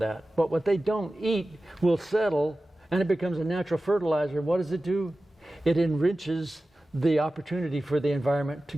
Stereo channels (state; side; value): normal; both; correlation 0.95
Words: But what they don't eat will settle, and it becomes a natural fertilizer. What does it do? It enriches the opportunity for the environment to